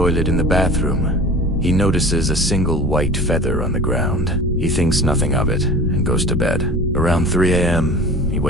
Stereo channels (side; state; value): both; normal; correlation 0.39